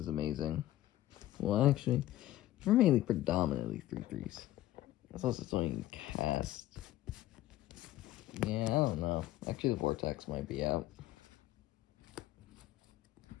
amazing. Well, actually, we're mainly predominantly 3/3s. That's also something you can cast. Yeah, I don't know. Actually, the Vortex might be out.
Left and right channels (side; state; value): right; quieter; 15.0 dB